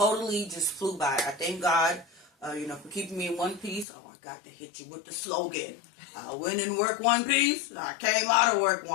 just flew by. I thank God, for keeping me in one piece. Oh, I got to hit you with the slogan. I went in work one piece. I came out of work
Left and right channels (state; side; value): drops out; right; at 3.9 s